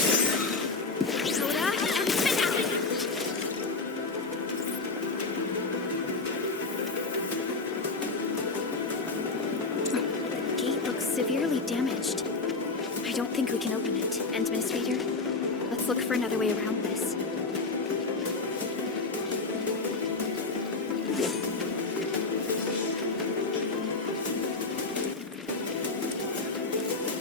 Severely damaged. I don't think we can open it. Administrator, let's look for another way around this.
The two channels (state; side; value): quieter; right; 3.7 dB